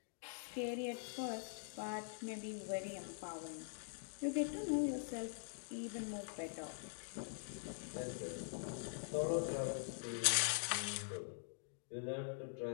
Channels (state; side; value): silent; right; digital silence